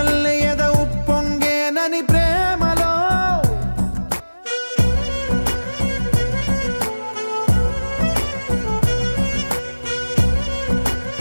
ఎద ఉప్పొంగేనని ప్రేమలో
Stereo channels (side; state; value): both; inverted; correlation -1.00